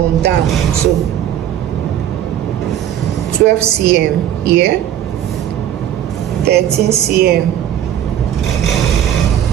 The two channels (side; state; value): left; quieter; 10.7 dB